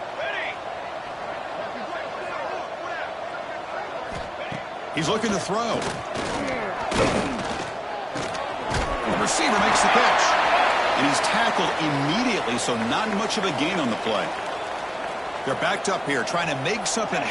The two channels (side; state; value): both; identical; correlation 1.00